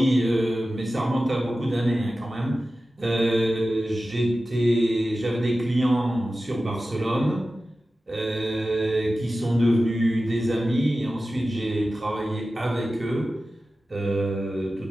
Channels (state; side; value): normal; both; correlation 0.94